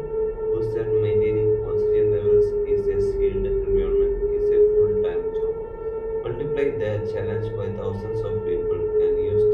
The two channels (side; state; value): both; identical; correlation 1.00